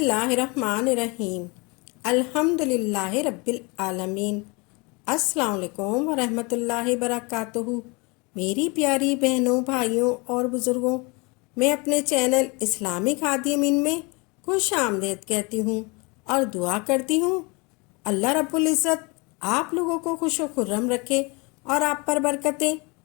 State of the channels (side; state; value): right; quieter; 28.4 dB